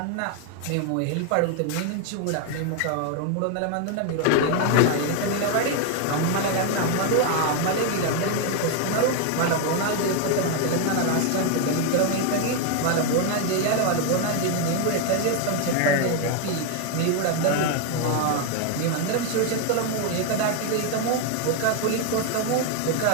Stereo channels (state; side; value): different; both; correlation 0.01